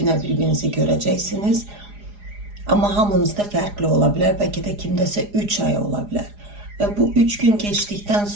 birbirinizi görəcəksiniz. Amma hamınızda fərqli ola bilər, bəlkə də kimdəsə 3 ay ola bilər. Və bu 3 gün keçdikdən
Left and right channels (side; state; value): left; late; 4.9 ms